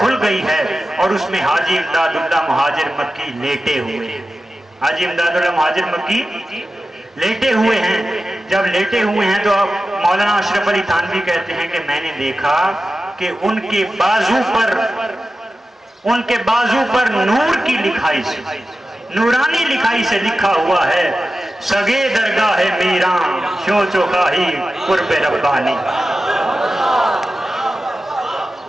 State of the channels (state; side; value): normal; both; correlation 0.93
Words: गई है, और उसमें हाजी इमदादुल्लाह मुहाजिर मक्की लेटे हुए हैं। हाजी इमदादुल्लाह मुहाजिर मक्की लेटे हुए हैं। जब लेटे हुए हैं तो अब मौलाना अशरफ अली थानवी कहते हैं कि मैंने देखा कि उनके बाजू पर नूर की लिखाई से, नूरानी लिखाई से लिखा हुआ है, सगे दरगाह मीरा शो चोखाही कुर्बे रब्बानी।